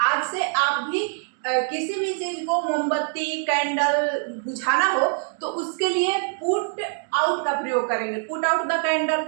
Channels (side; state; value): left; silent; 63 dB below the other